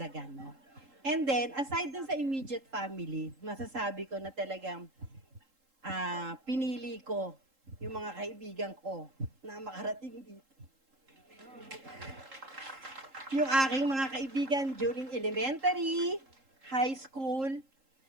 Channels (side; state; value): left; late; 3.7 ms